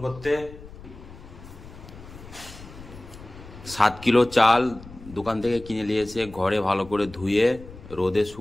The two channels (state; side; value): noise; left; rumble, 17 dB below the sound